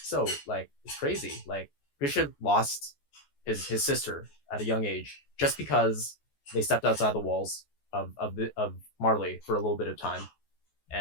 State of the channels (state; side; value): late; right; 14 ms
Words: so, like it's crazy. Like Grisha lost his sister at a young age just because they stepped outside the walls of Marley for a little bit of time,